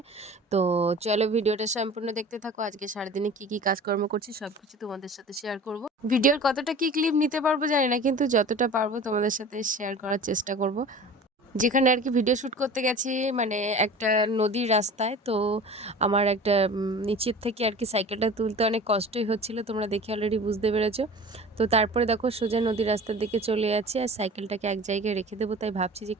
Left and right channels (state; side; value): normal; both; correlation 0.40